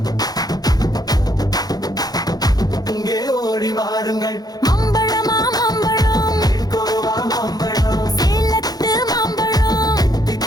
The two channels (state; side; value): late; right; 0.19 ms